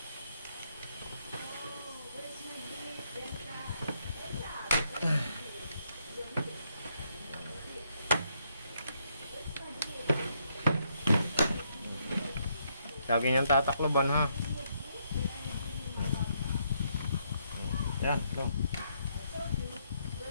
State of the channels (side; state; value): both; inverted; correlation -0.75